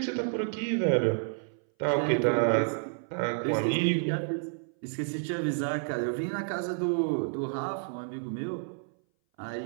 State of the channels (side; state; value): left; silent; 58 dB below the other